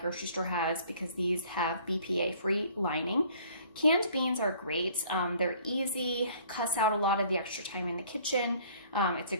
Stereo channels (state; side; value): inverted; both; correlation -0.54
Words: store has, because these have BPA-free lining. Canned beans are great. They're easy, cuts out a lot of the extra time in the kitchen. It's a